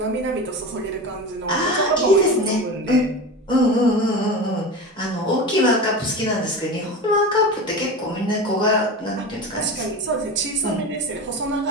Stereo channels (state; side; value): normal; both; correlation 0.27